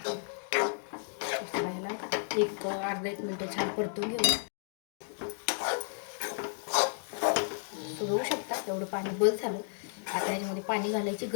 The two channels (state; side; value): silent; right; digital silence